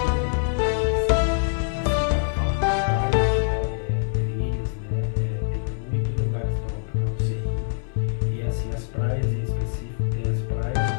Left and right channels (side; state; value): right; silent; 61 dB below the other